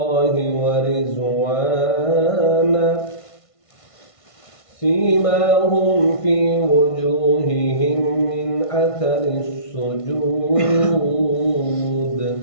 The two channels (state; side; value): late; right; 1.5 ms